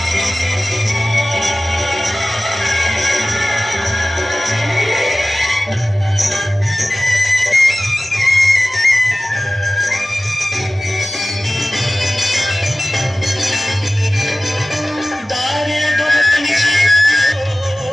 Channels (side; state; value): both; normal; correlation 0.97